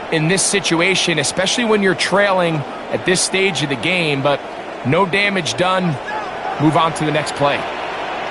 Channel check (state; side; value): identical; both; correlation 1.00